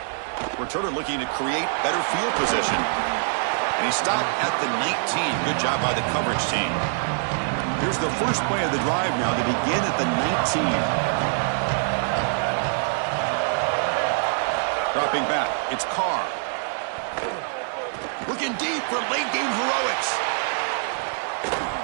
Returner looking to create better field position. And he stopped at the 19. Good job by the coverage team. Here's the first play of the drive now to begin at the 19. Dropping back, it's Carr. Looking deep for late-game heroics.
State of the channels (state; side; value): silent; left; digital silence